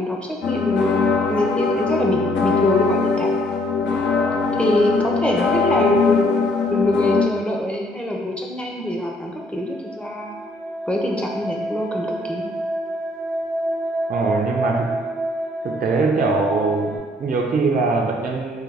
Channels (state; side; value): normal; both; correlation 0.65